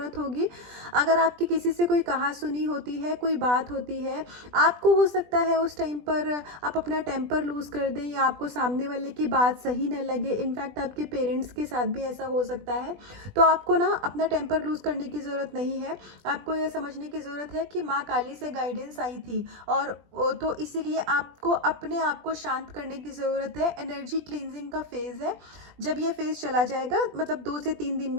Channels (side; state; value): left; late; 20 ms